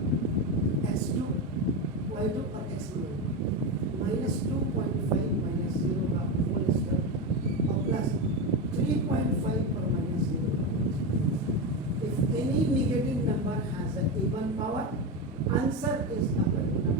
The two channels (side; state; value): both; normal; correlation 0.15